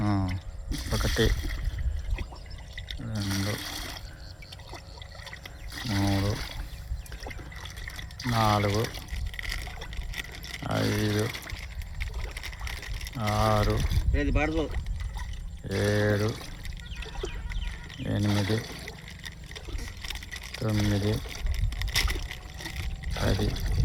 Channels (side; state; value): both; identical; correlation 1.00